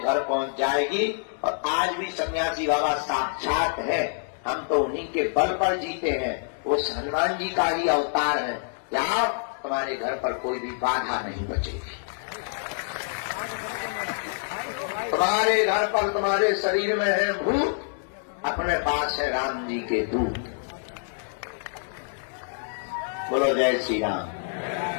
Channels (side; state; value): right; silent; digital silence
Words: पहुंच जाएगी। और आज भी सन्यासी बाबा साक्षात है, हम तो उन्हीं के बल पर जीते हैं, वो हनुमान जी का ही अवतार है। यहाँ तुम्हारे घर पर कोई भी बाधा नहीं बचेगी। तुम्हारे घर पर, तुम्हारे शरीर में है भूत, अपने पास है राम जी के दूत। बोलो जय श्री राम।